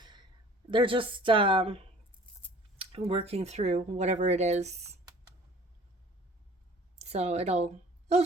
they're just working through whatever it is. So it'll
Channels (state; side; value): normal; both; correlation 0.49